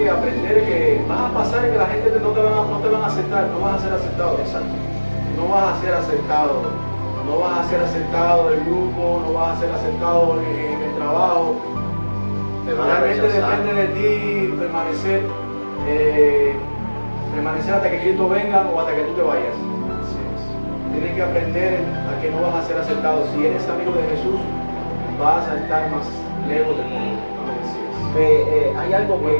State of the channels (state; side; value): inverted; both; correlation -1.00